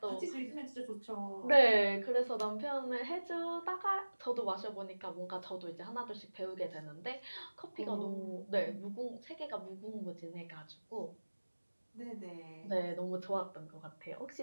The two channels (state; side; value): inverted; both; correlation -1.00